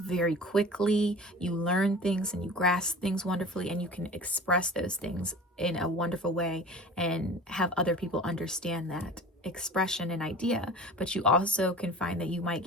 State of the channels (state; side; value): normal; both; correlation 0.39